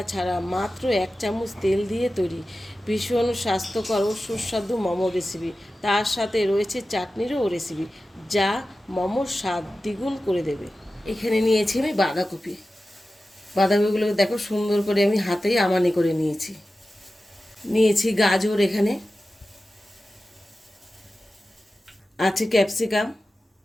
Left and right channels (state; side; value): normal; both; correlation 0.94